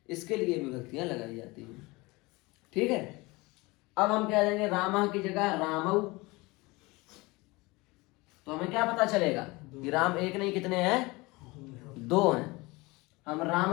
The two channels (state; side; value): quieter; right; 23.4 dB